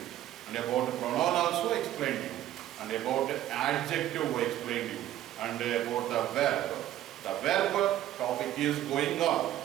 and about pronoun also explained you, and about adjective I explained you, and about the verb. The verb topic is going on.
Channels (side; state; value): left; quieter; 13.0 dB